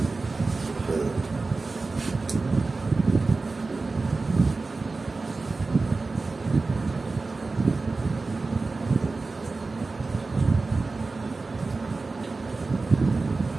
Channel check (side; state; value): left; quieter; 3.7 dB